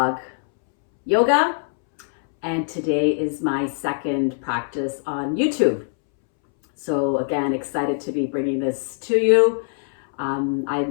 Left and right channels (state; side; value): silent; right; 64 dB below the other